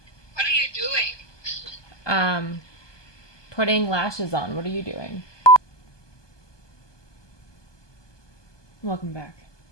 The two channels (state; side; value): late; right; 1.2 ms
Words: What are you doing? Putting lashes on. What are you doing? Welcome back.